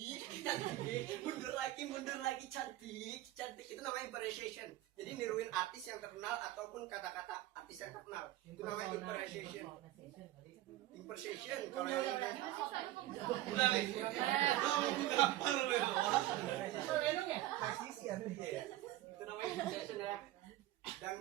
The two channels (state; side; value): quieter; left; 15.4 dB